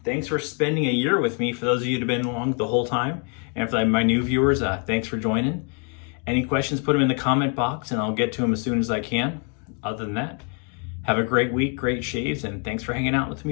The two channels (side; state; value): right; quieter; 39.5 dB